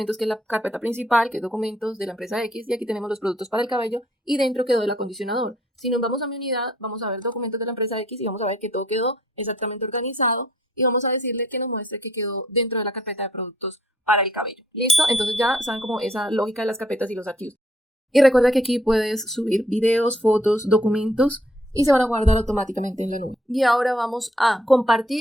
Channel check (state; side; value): normal; both; correlation 0.65